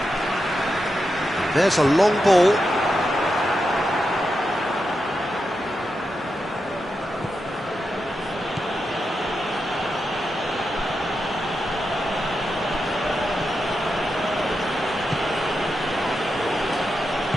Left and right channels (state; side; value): normal; both; correlation 0.87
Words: There's a long ball.